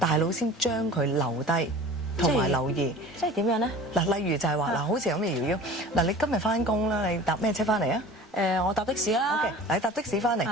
腦先將佢留低同埋留意。即係點樣咧？嗱，例如就係話嗱，好似咁嘅瑤瑤，嗱，你今日翻工啦，你搭咩車翻嚟啊？我搭的士啦。OK，嗱，你搭的士翻嚟，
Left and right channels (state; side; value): normal; both; correlation 0.41